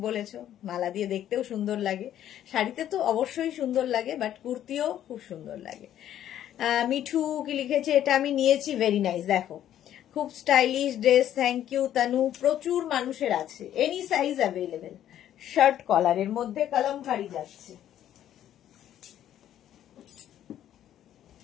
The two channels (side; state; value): right; quieter; 11.3 dB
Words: বলেছো, মালা দিয়ে দেখতেও সুন্দর লাগে, শাড়িতে তো অবশ্যই সুন্দর লাগে, বাট কুর্তিও খুব সুন্দর লাগে। মিঠু কি লিখেছে, এটা আমি নিয়েছি, ভেরি নাইস। দেখো খুব stylish dress, thank you Tanu. প্রচুর মানুষের আছে, এনি সাইজ অ্যাভেলেবেল। শার্ট কলারের মধ্যে কলমকারি যাচ্ছে।